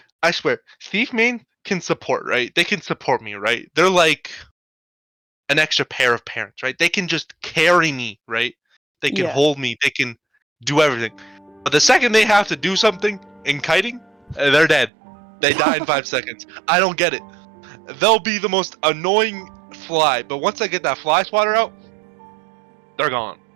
I swear, thief main can support, right? They can support me, right? They're like an extra pair of parents, right? They can just carry me, right? They can Yeah. hold me. They can do everything. But the second they have to do something in kiting, they're dead. They die in 5 seconds. I don't get it. They'll be the most annoying fly, but once I get that fly swatter out, they're gone.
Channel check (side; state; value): left; drops out; at 14.9 s